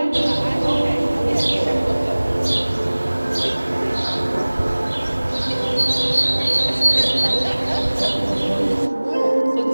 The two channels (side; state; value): both; inverted; correlation -1.00